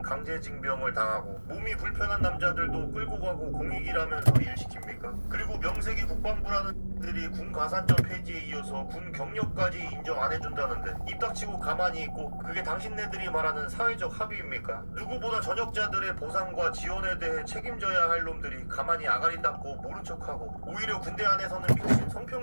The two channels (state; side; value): inverted; both; correlation -1.00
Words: 강제징병을 당하고 몸이 불편한 남자들도 끌고 가고 공익이라면서 일시킵니까? 그리고 명색이 국방부라는 들이 군 가산점 폐지에 이어서 군 경력까지 인정 안 해준다는데 입 닥치고 가만히 있고 그게 당신네들이 말하는 사회적 합의입니까? 누구보다 전역자들의 보상과 지원에 대해 책임져야 할 놈들이 가만히 아가리 닦고 모른 척하고 오히려 군대 안에서는 미친